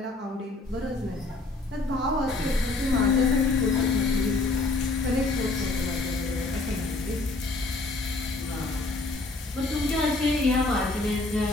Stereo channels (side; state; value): right; quieter; 3.2 dB